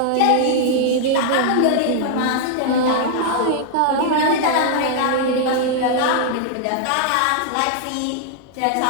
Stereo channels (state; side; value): different; both; correlation -0.01